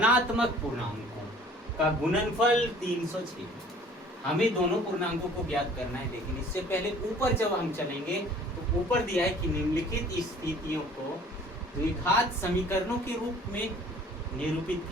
पूर्णांकों का गुणनफल 306। हमें दोनों पूर्णांकों को ज्ञात करना है, लेकिन इससे पहले ऊपर जब हम चलेंगे तो ऊपर दिया है कि निम्नलिखित स्थितियों को द्विघात समीकरणों के रूप में निरूपित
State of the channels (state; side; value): normal; both; correlation 0.51